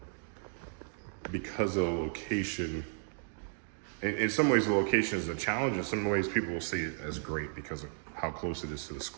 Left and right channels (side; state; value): left; silent; digital silence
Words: because of the location. In some ways, the location is a challenge. In some ways, people will see it as great because of how close it is to the